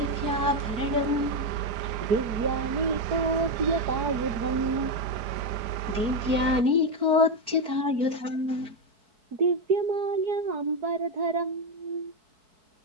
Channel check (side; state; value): left; late; 4.5 ms